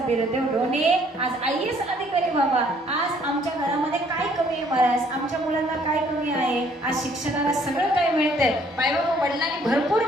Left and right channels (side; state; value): both; normal; correlation 0.62